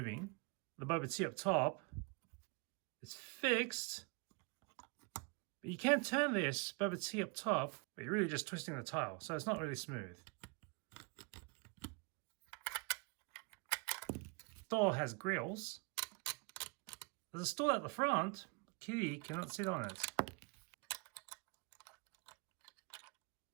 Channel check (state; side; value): quieter; left; 32.0 dB